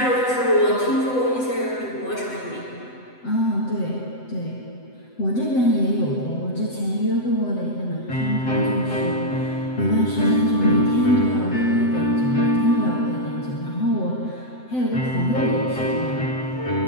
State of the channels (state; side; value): late; right; 7.9 ms